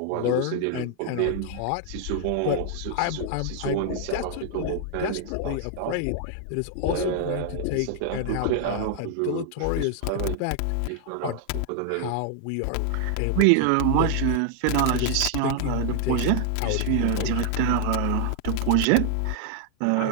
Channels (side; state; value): both; different; correlation 0.00